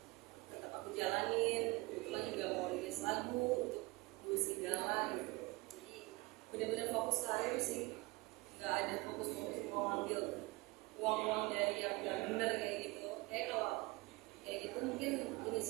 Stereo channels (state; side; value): quieter; left; 23.5 dB